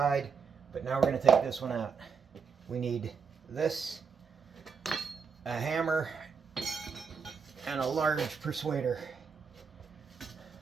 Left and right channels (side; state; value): left; quieter; 6.0 dB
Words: but now we're going to take this one out. We need this, a hammer, and a large persuader.